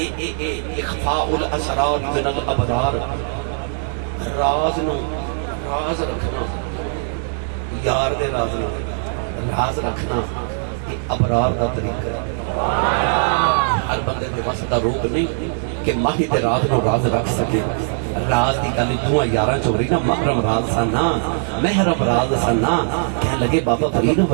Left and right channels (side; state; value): left; silent; 56 dB below the other